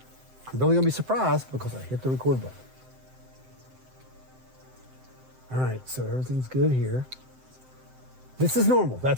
I'm really gonna be surprised because I hit the record button. All right, so everything's good here. This is normal.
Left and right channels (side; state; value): left; late; 7.8 ms